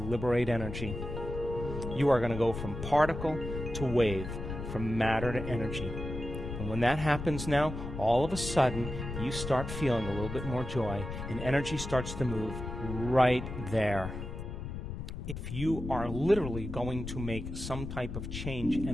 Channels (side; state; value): left; noise; rumble, 7 dB below the sound